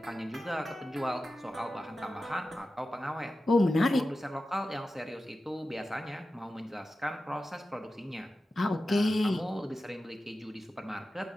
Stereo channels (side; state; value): both; normal; correlation 0.93